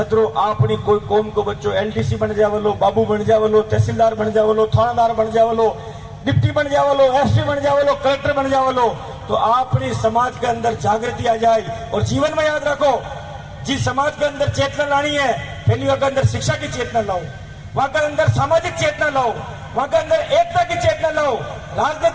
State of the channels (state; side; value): identical; both; correlation 1.00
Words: अपनी कोई कौम को बच्चों एलडीसी बन जावलो, बाबू बन जावलो, तहसीलदार बन जावलो, थानादार बन जावलो, डिप्टी बन जावलो, एसपी बन जावलो, कलेक्टर बन जावलो, तो अपनी समाज के अंदर जागृति आ जाए। और जीवन में याद रखो जिस समाज के अंदर चेतना लानी है पहली वहां के अंदर शिक्षा की चेतना लाओ, वहां के अंदर सामाजिक चेतना लाओ, वहां के अंदर एकता की चेतना लाओ,